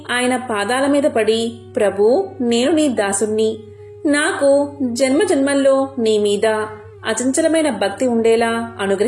ఆయన పాదాల మీద పడి, ప్రభూ, నేను నీ దాసుణ్ణి. నాకు జన్మజన్మల్లో నీ మీద అచంచలమైన భక్తి ఉండేలా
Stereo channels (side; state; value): both; identical; correlation 1.00